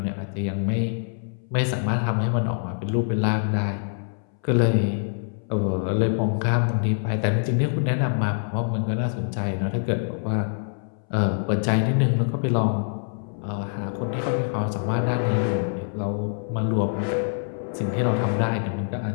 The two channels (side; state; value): right; silent; 62 dB below the other